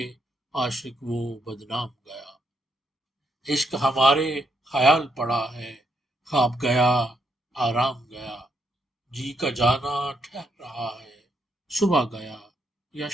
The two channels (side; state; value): both; normal; correlation 0.77